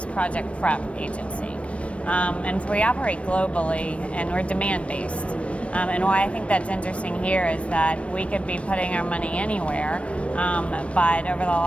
project prep agency. And so we operate globally and we're demand-based. And why I think that's interesting here is that we could be putting our money anywhere, but over the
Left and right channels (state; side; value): late; right; 0.062 ms